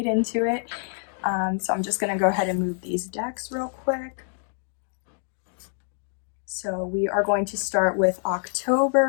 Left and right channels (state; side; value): silent; right; 59 dB below the other